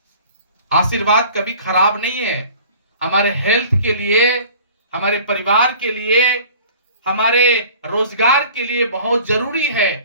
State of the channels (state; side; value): inverted; both; correlation -0.46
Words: आशीर्वाद कभी खराब नहीं है। हमारे हेल्थ के लिए, हमारे परिवार के लिए, हमारे रोजगार के लिए बहुत जरूरी है